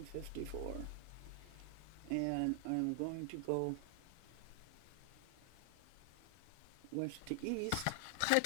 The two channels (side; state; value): both; different; correlation 0.00